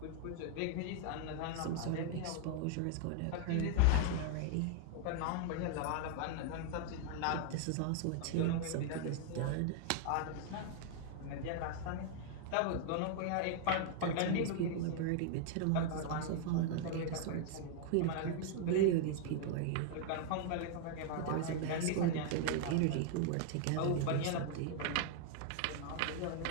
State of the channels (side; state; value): both; different; correlation 0.00